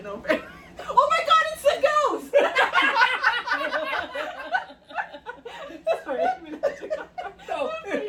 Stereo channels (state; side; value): identical; both; correlation 1.00